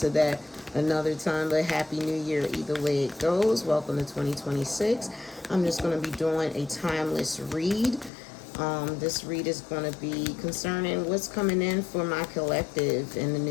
that another time. But Happy New Year either way it goes. Welcome to 2026. I'm just going to be doing a timeless read. This read is going to be concerning what's coming in for my collective in the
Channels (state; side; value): drops out; right; at 8.1 s